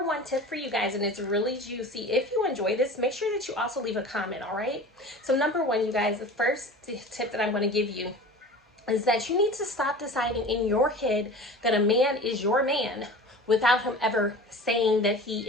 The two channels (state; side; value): normal; both; correlation 0.38